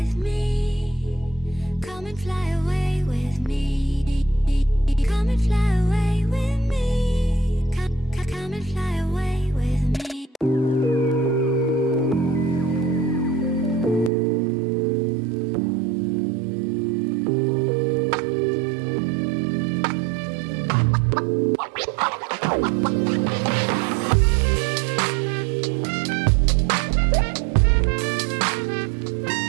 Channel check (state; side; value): drops out; left; at 14.1 s